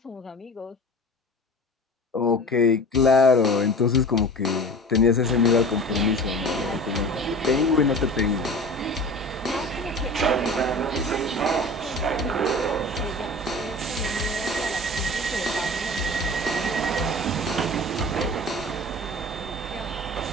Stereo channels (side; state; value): both; normal; correlation 0.37